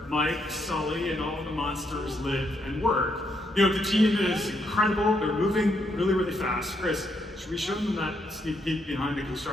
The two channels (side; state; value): both; normal; correlation 0.76